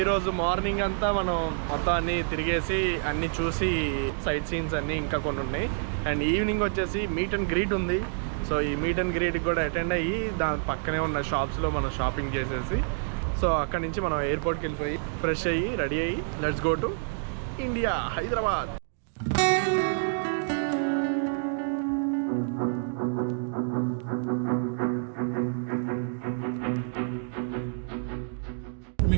morning అంతా మనం మొత్తం అన్ని తిరిగేసి అన్ని చూసి సైట్ సీన్స్ అన్నీ ఇంకా కొన్ని ఉన్నాయి. అండ్ ఈవినింగ్ వచ్చేసి మీట్ అండ్ గ్రీట్ ఉంది. సో ఈ మీట్ అండ్ గ్రీట్కి కూడా అటెండ్ అయ్యి దాని పక్కనే ఉన్న షాప్స్లో మనం షాపింగ్ చేసేసి సో అక్కడి నుంచి మనం ఎయిర్పోర్ట్కి వెళ్ళిపోయి ఫ్రెష్ అయ్యి రెడీ అయ్యి let's go to India, Hyderabad.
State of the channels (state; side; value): silent; left; digital silence